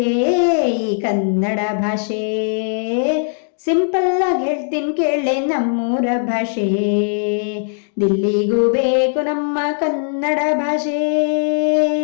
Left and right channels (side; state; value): right; silent; digital silence